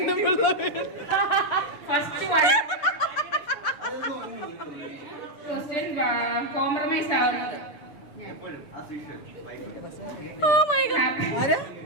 ഫസ്റ്റ് ക്വസ്റ്റ്യൻ കോംപ്രമൈസ് ആവുന്നത് എപ്പോഴും ആ സീഷൻ ഓ മൈ ഗോഡ്,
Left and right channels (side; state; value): right; late; 6.8 ms